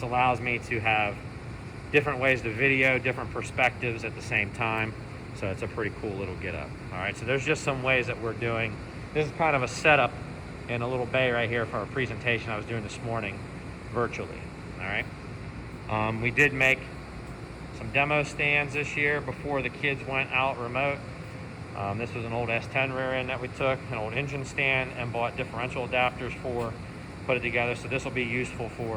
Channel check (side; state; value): both; identical; correlation 1.00